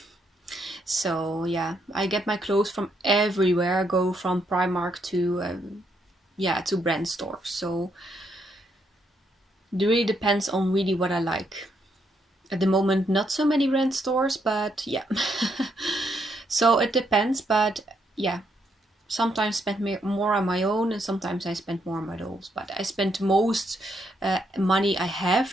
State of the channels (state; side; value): normal; both; correlation 0.76